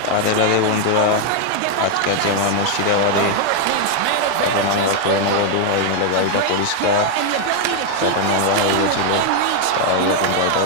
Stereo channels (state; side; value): different; both; correlation 0.00